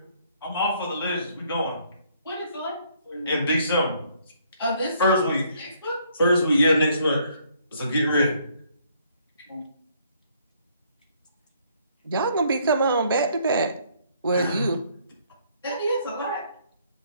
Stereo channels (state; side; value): inverted; both; correlation -0.66